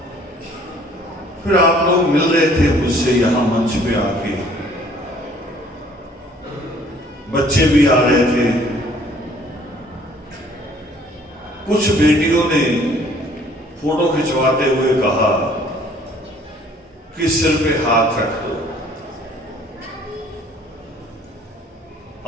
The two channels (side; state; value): both; normal; correlation 0.57